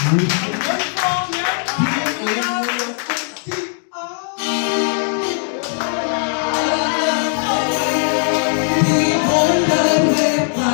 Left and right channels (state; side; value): silent; right; 67 dB below the other